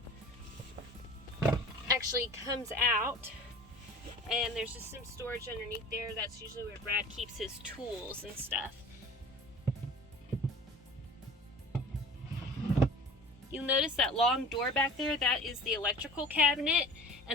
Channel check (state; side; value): normal; both; correlation 0.41